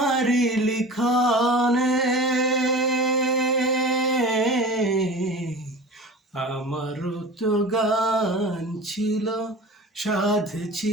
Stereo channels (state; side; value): normal; both; correlation 0.37